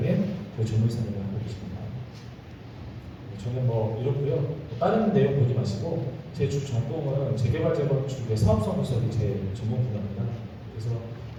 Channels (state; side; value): identical; both; correlation 1.00